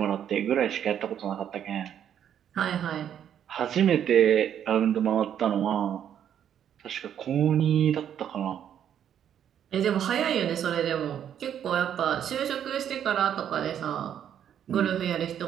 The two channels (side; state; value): left; quieter; 9.5 dB